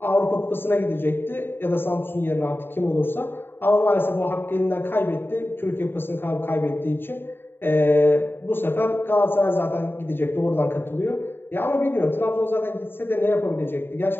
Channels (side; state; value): right; late; 0.10 ms